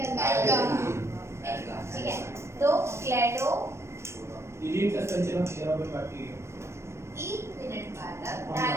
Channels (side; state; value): left; late; 0.13 ms